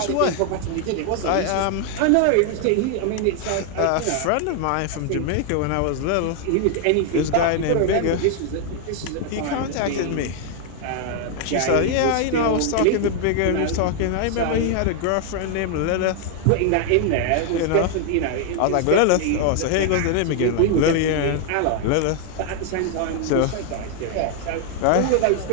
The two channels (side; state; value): both; different; correlation 0.00